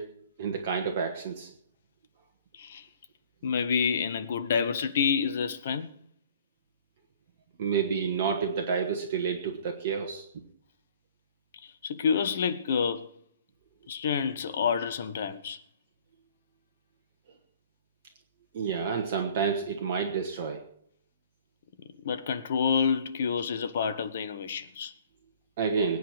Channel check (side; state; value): both; inverted; correlation -0.54